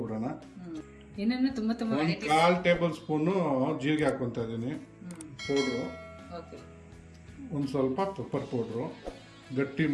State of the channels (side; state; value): both; identical; correlation 1.00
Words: ಒಂದು 1/4 ಟೇಬಲ್ ಸ್ಪೂನು ಜೀರಿಗೆ ಹಾಕೊತಾ ಇದ್ದೀನಿ ಪೌಡ್ರು, ಒಂದು ಸ್ವಲ್ಪ ಪೆಪ್ಪರ್ ಪೌಡ್ರು, ಗಟ್ಟಿ